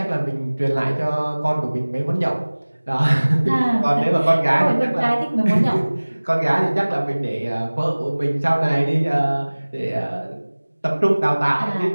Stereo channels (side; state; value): both; inverted; correlation -1.00